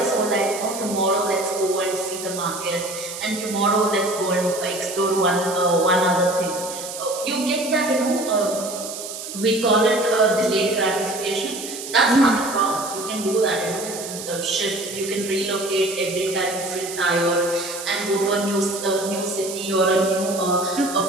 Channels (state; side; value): noise; right; hiss, 9 dB below the sound